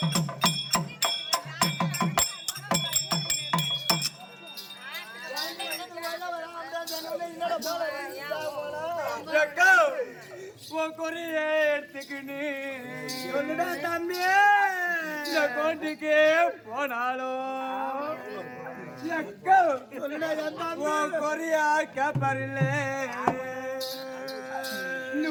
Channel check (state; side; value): identical; both; correlation 1.00